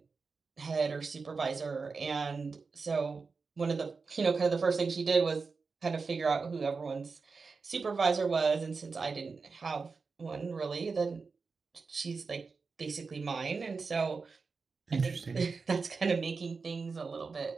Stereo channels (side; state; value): left; quieter; 4.6 dB